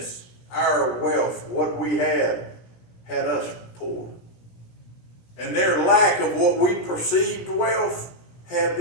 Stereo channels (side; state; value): right; late; 16 ms